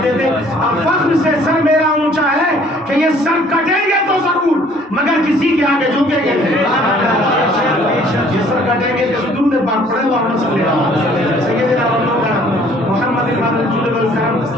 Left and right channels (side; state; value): both; normal; correlation 0.57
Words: تھے اب فخر سے سر میرا اونچا ہے کہ یہ سر کٹیں گے تو ضرور مگر کسی کے آگے جھکیں گے، یہ سر کٹیں گے کہ درود پاک پڑھیں اللہم صلی علی سیدنا محمد الرسول والکرم